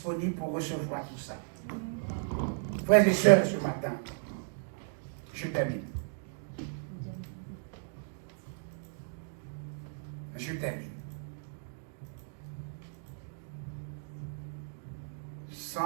pour recevoir tout ça. Frères et sœurs, ce matin, je termine. Je termine.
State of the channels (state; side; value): silent; left; digital silence